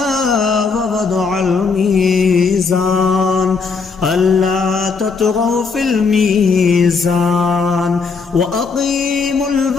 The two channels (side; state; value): right; quieter; 4.8 dB